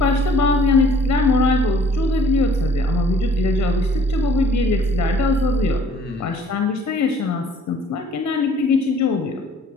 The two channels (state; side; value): normal; both; correlation 0.56